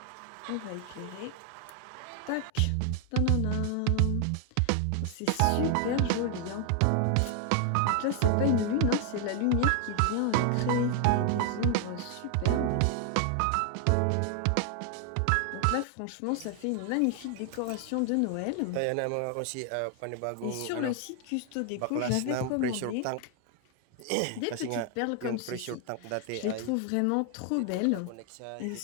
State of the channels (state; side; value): different; both; correlation 0.00